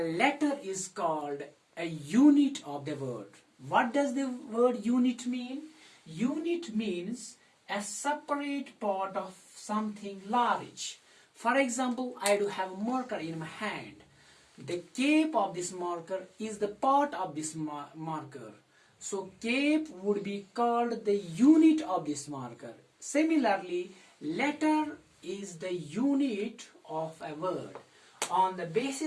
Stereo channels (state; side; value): identical; both; correlation 1.00